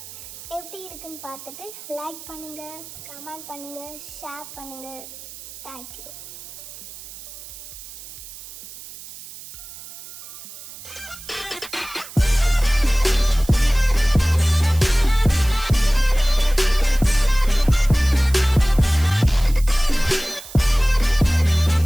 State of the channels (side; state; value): right; noise; hiss, 15 dB below the sound